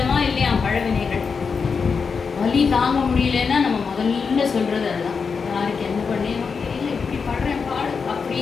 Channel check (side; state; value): right; quieter; 5.5 dB